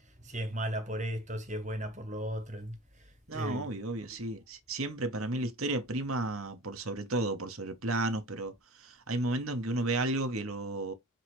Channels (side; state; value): both; normal; correlation 0.39